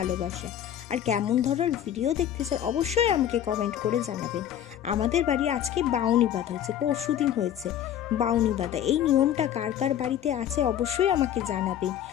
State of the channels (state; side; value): quieter; right; 10.5 dB